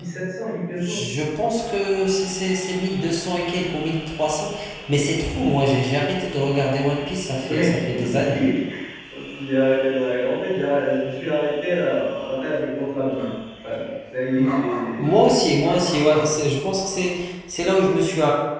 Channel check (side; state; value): both; identical; correlation 1.00